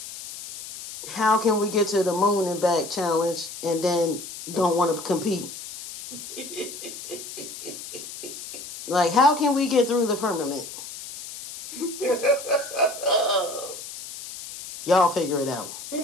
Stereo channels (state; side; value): noise; left; hiss, 11 dB below the sound